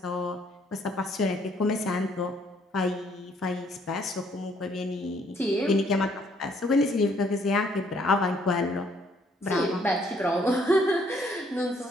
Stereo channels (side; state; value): both; normal; correlation 0.66